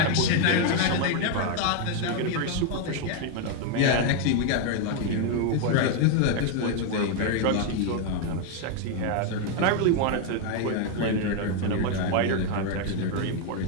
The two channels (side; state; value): both; different; correlation 0.01